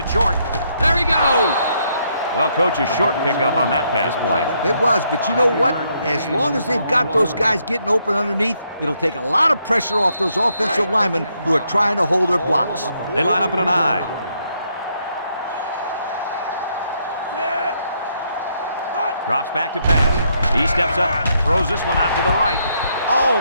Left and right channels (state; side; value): inverted; both; correlation -0.74